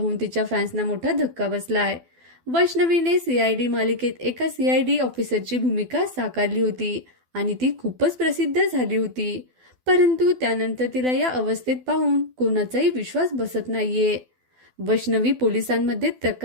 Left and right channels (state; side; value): late; left; 12 ms